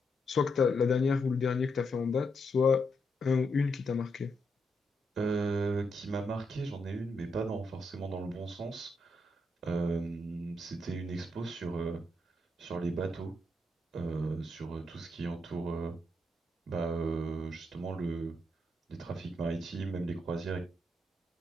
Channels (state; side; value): normal; both; correlation 0.80